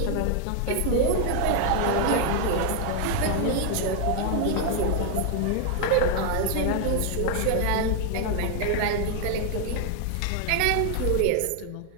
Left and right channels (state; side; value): different; both; correlation 0.00